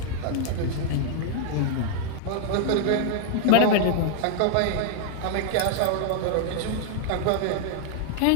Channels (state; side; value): different; both; correlation -0.01